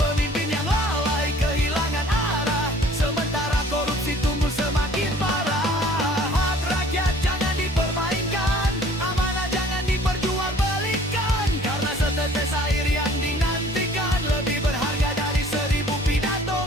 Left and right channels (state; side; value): normal; both; correlation 0.53